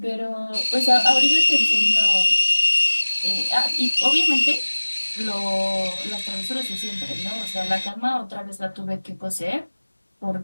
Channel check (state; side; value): inverted; both; correlation -1.00